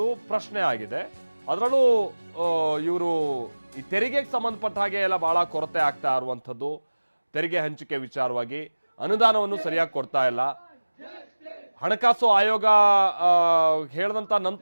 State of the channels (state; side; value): inverted; both; correlation -1.00